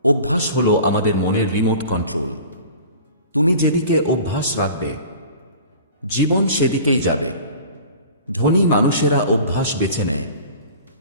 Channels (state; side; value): inverted; both; correlation -0.42